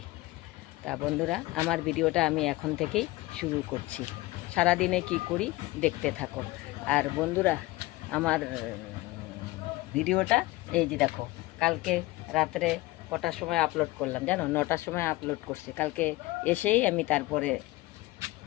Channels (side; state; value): right; quieter; 19.3 dB